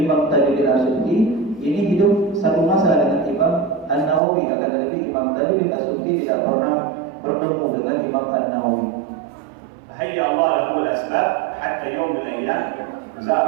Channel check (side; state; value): left; drops out; at 4.2 s